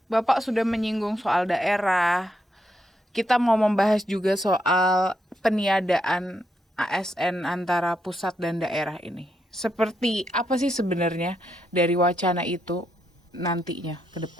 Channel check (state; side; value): normal; both; correlation 0.80